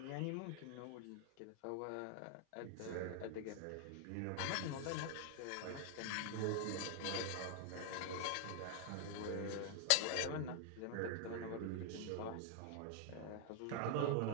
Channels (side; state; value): both; different; correlation 0.00